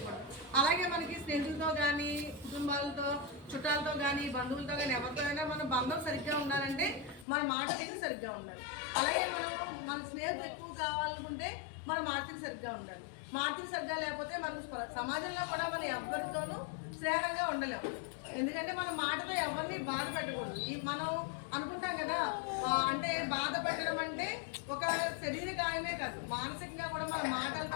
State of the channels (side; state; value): right; drops out; at 7.2 s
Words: అలాగే మనకి స్నేహితులతో కానీ, కుటుంబాలతో, చుట్టాలతో కానీ, బంధువులతో కానీ ఎవరితో అయినా మన బంధం సరిగ్గా ఉండాలంటే మన మాట తీరు సరిగ్గా ఉండాలి. అలాగే మన స్నేహితులు ఎక్కువ కావాలనుకుంటే మన మాట తీరు సరిగ్గా ఉండాలి. మాట తీరు సరిగ్గా లేకపోతే మనకు సమాజంలో కూడా మనం ఎవరితోనూ స్నేహంగా ఉండలేము. ఎందుకంటే మన మాటతో ఎవరిని బాధ పెట్టకూడదు. మనం అనుకుంటాం కదా, అంటే బాధ పెట్టడం అంటే ఒక శరీర గాయమే కాదు, మానసికంగా కూడా మన